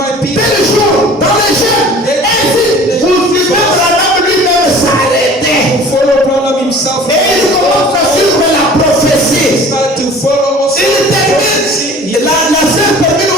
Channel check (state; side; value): normal; both; correlation 0.45